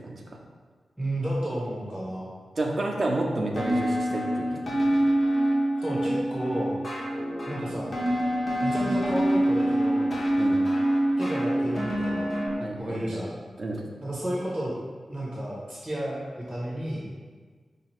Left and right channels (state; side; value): normal; both; correlation 0.96